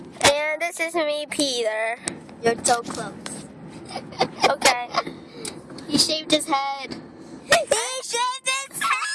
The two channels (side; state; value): both; identical; correlation 1.00